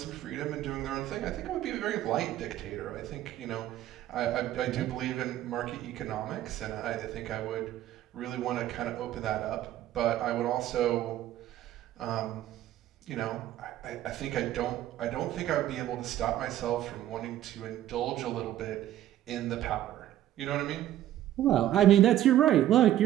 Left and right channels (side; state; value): left; quieter; 12.9 dB